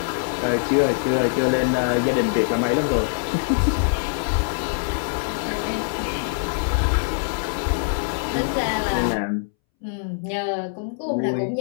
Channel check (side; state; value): right; silent; 63 dB below the other